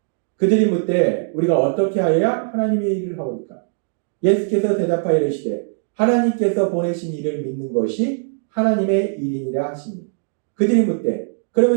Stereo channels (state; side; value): silent; left; digital silence